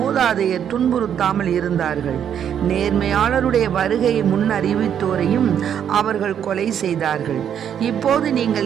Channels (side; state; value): left; quieter; 8.9 dB